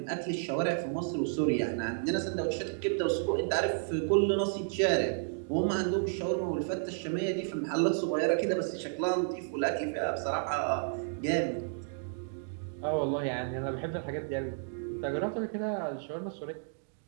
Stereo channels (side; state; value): left; silent; digital silence